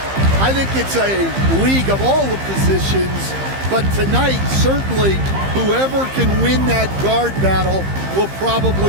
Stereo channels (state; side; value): late; left; 15 ms